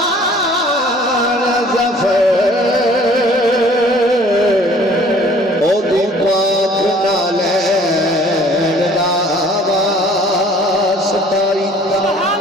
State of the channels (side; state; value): both; normal; correlation 0.53